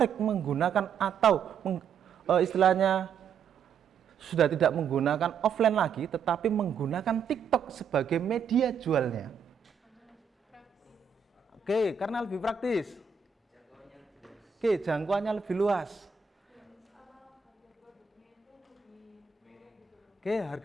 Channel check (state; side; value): quieter; left; 6.6 dB